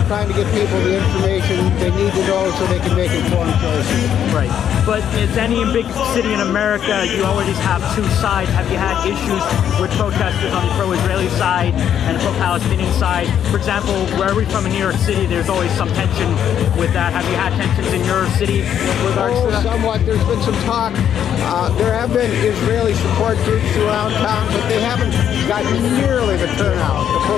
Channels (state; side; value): quieter; right; 9.4 dB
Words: trying to get people the information they need to know so they can make informed choices. Right. But as any big city in America, you always have two sides. Have you had issues with protesters on the pro-Israeli side and the pro-Palestinian side? For example, where we're from in New York City, there's always some tension with that. Have you had tensions in your city with regards to that? Somewhat. There's been some talk. There have been Israeli support groups around town, but they haven't gotten nearly the turnout the